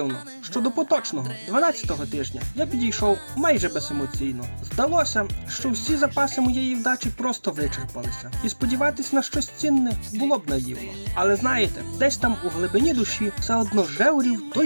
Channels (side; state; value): both; inverted; correlation -1.00